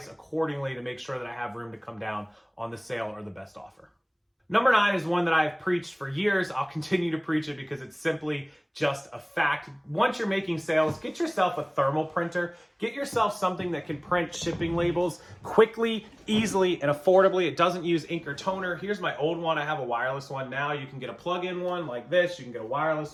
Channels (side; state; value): both; identical; correlation 1.00